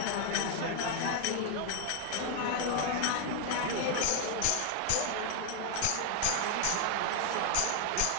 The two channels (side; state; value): both; different; correlation 0.00